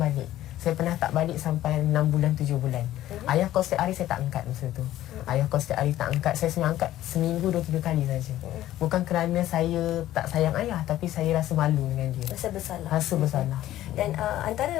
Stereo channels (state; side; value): quieter; right; 13.8 dB